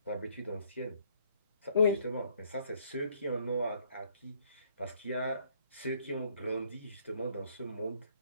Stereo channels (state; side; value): inverted; both; correlation -0.66